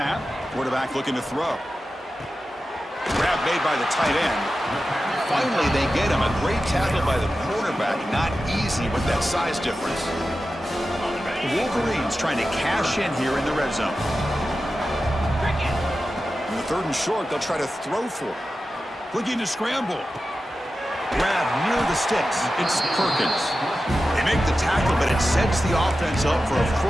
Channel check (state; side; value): normal; both; correlation 0.93